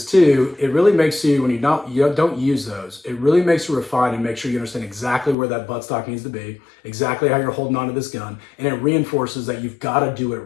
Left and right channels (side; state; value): right; drops out; at 5.4 s